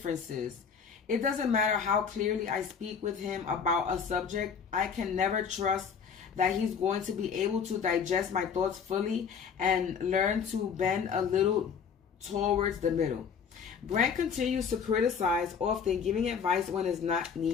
It doesn't matter how clearly I speak with him about a subject, I can never trust that he's going to be able to digest my thoughts fully and learn to bend a little towards the middle. Grant continues to criticize, often giving advice when it's not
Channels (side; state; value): right; quieter; 6.6 dB